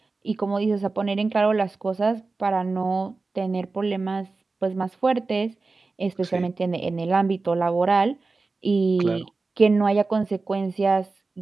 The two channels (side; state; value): left; quieter; 3.8 dB